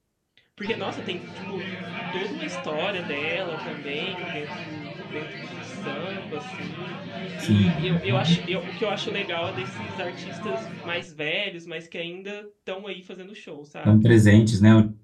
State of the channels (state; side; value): identical; both; correlation 1.00